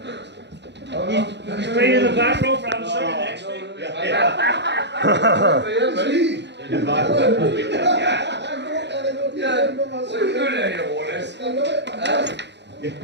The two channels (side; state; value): left; late; 0.51 ms